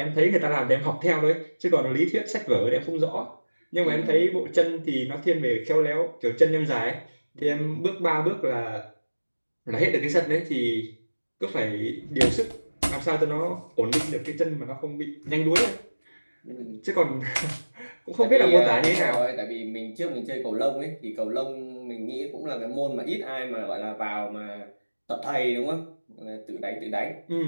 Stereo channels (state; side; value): inverted; both; correlation -1.00